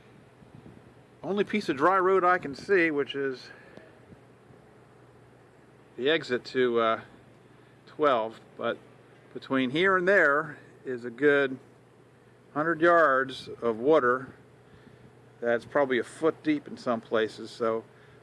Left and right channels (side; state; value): both; identical; correlation 1.00